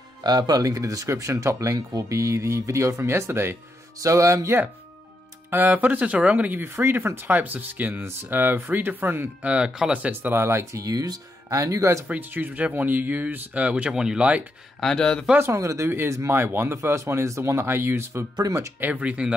put a link in the description. Top link will be the video from yesterday. So yeah, for the tutorial, I'm going to give you three different types of skins, three different color sets that I like to use. And you guys are free to choose whichever one you use, whichever one you like. And the first one I'm going to do is my one. The first one is the one that I use for pretty much everything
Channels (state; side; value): normal; both; correlation 0.82